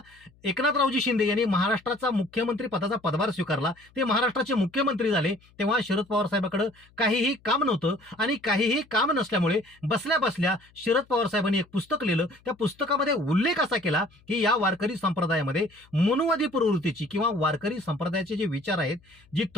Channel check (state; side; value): noise; left; hum, 30 dB below the sound